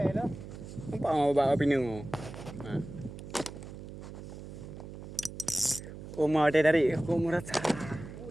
dah. Nampak bawa pinu. Ha. Oma dia dari aku merasa. Oh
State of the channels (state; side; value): noise; right; hum, 12 dB below the sound